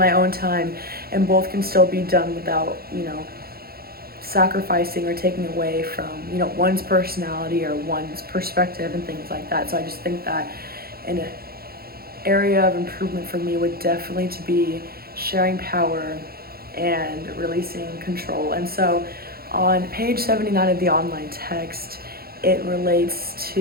own time, and both can still be done without, sacrificing or taking away from, one's personality or one's perspective and things like that. So I just think that an area of improvement for me would definitely to be sharing power and releasing control. And so on page 79 of the online text, it relates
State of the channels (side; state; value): left; late; 0.44 ms